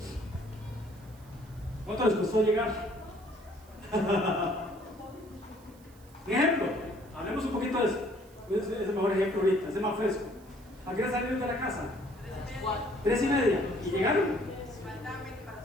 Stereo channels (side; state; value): right; noise; hiss, 27 dB below the sound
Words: ¿Cuánto les costó llegar? Un ejemplo, hablemos un poquito de eso. Es el mejor ejemplo ahorita, es el más fresco. ¿A qué hora salieron de la casa? 3:30. ¿Y llegaron? Faltaban 20 para